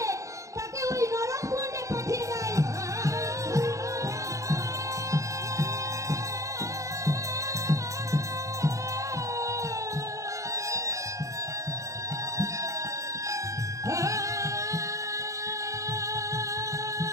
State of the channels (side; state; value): left; late; 0.15 ms